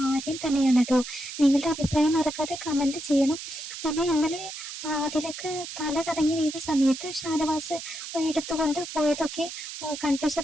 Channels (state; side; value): noise; right; hiss, 9 dB below the sound